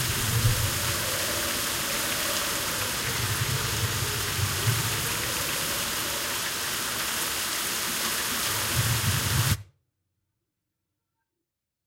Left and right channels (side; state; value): both; identical; correlation 1.00